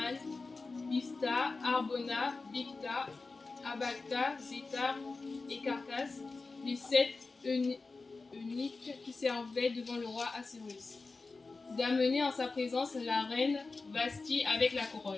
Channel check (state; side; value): quieter; right; 3.8 dB